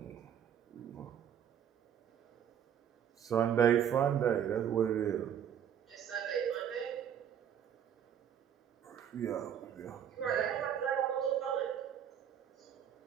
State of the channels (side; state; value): left; quieter; 9.1 dB